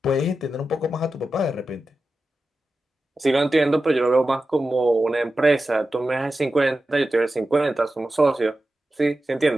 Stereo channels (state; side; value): normal; both; correlation 0.92